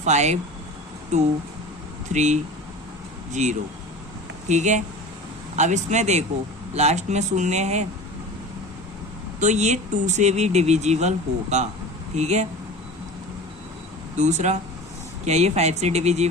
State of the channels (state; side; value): normal; both; correlation 0.35